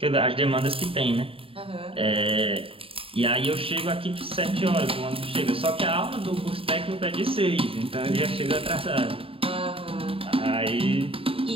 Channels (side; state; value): left; late; 0.27 ms